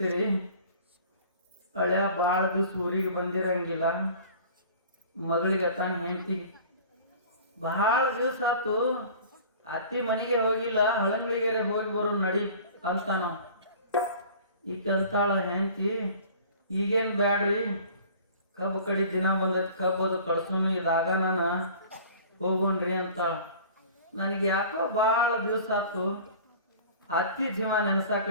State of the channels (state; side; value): inverted; both; correlation -0.45